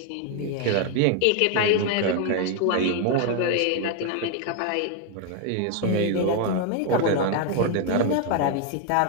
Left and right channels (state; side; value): different; both; correlation 0.01